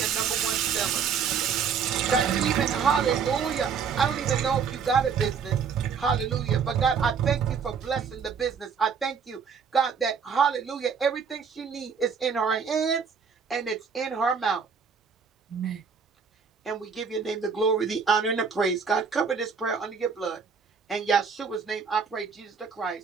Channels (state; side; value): quieter; left; 6.2 dB